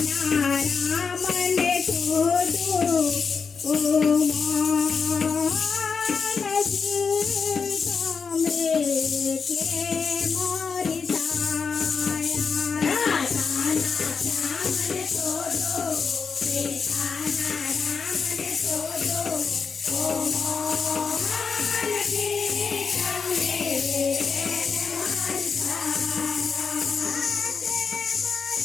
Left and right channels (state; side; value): quieter; right; 5.5 dB